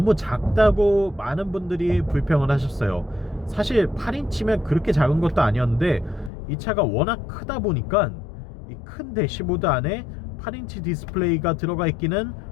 작다고 많은 분들이 불평을 하셨어요. 사실 8인치면 그렇게 작은 것도 아니었는데 이 차가 워낙 크다 보니까 이 큰 대시보드 안에 8인치 디스플레이가 들어가 있기는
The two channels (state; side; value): drops out; right; at 6.3 s